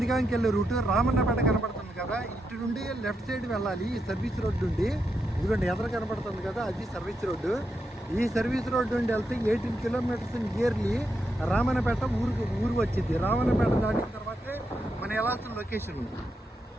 వెళ్ళే రూటు. రామన్నపేట కనపడుతుంది కదా, ఇటు నుండి లెఫ్ట్ సైడ్ వెళ్ళాలి ఈ సర్వీస్ రోడ్ నుండి. ఇదిగోండి ఎదురు కనపడుతుంది కదా, అది సర్వీస్ రోడ్డు. ఈ సర్వీస్ రోడ్ నుండి వెళ్తే 18 kilometers నియర్లీ రామన్నపేట ఊరు వచ్చింది. రామన్నపేట దాటిన తర్వాతే మనం వెళ్ళాల్సిన లొకేషన్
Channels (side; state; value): both; normal; correlation 0.84